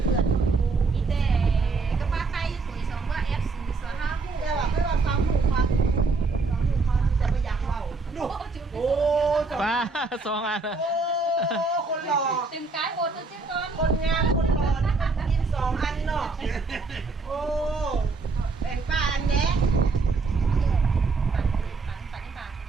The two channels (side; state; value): left; quieter; 4.0 dB